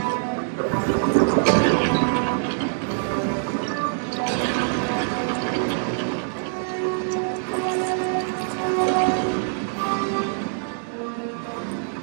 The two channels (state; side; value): silent; left; digital silence